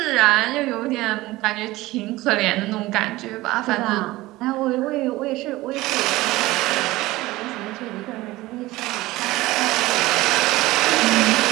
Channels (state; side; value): quieter; left; 18.7 dB